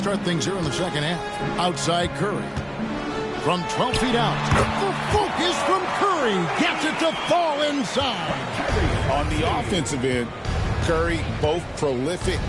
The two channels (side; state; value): both; identical; correlation 1.00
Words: things here in the second half. Outside Curry. From 12 feet out. The focus from Curry. Gets it to fall inside. On the offensive end, Curry both prolific